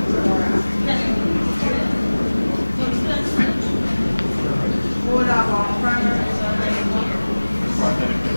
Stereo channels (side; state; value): both; inverted; correlation -1.00